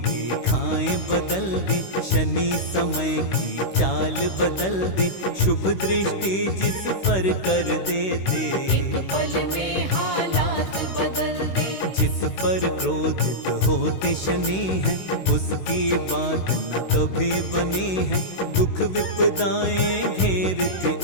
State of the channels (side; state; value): right; late; 16 ms